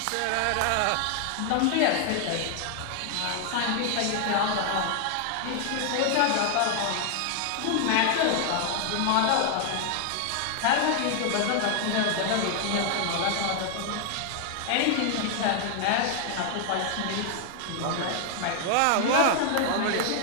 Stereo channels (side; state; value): both; different; correlation 0.00